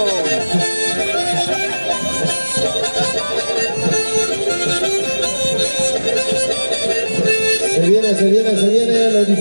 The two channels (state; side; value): inverted; both; correlation -1.00